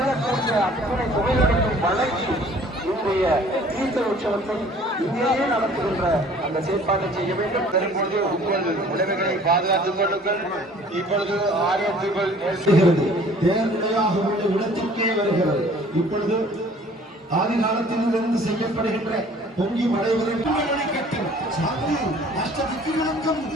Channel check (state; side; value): normal; both; correlation 0.52